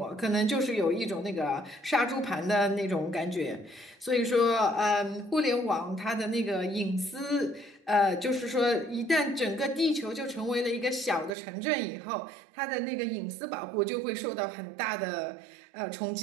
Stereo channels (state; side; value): drops out; left; at 11.4 s